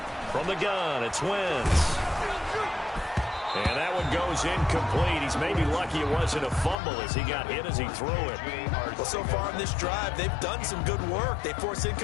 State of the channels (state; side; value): drops out; right; at 6.8 s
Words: From the gun, it's Wentz. And that one goes incomplete. He's maybe lucky it wasn't a fumble as he got hit as he threw it. Well, so far in this drive, they've done some good work. They force